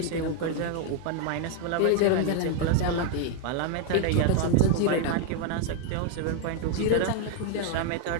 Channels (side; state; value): both; different; correlation 0.01